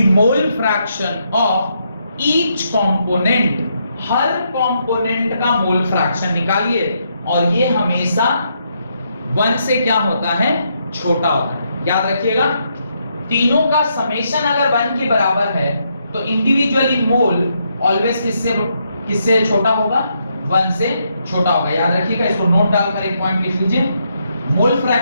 mole fraction of each component, her component का मोल फ्रैक्शन निकालिए, और ये हमेशा 1 से क्या होता है, छोटा होता है। याद रखिएगा, तीनों का समेशन अगर 1 के बराबर है तो इंडिविजुअली मोल ऑलवेज किससे छोटा होगा, 1 से छोटा होगा। याद रखिएगा, इसको नोट डालकर एक पॉइंट लिख लीजिए, मोल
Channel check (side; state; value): both; inverted; correlation -0.78